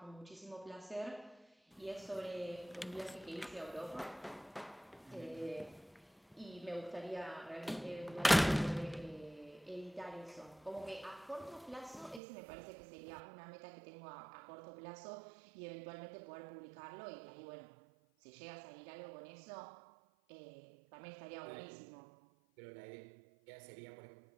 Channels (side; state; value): left; drops out; at 12.2 s